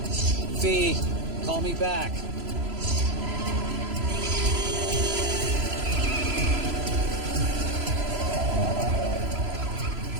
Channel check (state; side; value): late; left; 3.0 ms